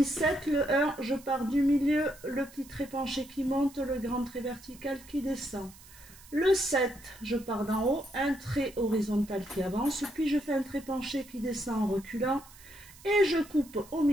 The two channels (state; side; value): noise; right; hiss, 21 dB below the sound